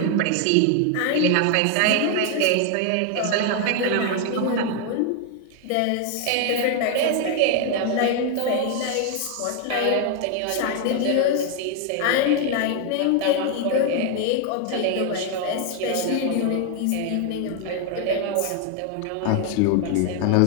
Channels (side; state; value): both; different; correlation 0.00